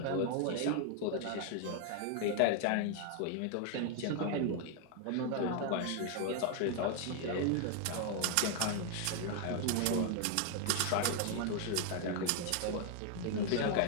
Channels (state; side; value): different; both; correlation 0.00